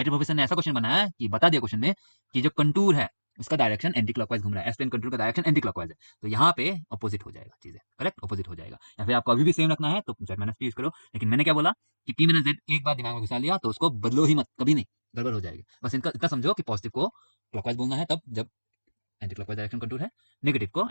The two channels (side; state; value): both; inverted; correlation -1.00